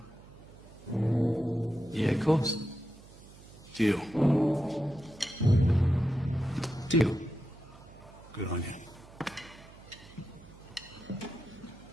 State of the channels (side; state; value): right; noise; hum, 21 dB below the sound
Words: Yeah, of course. Deal. Deal. Good on you.